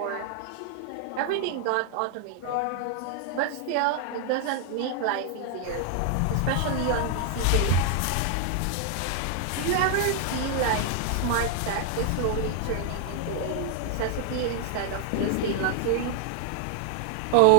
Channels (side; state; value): both; different; correlation 0.00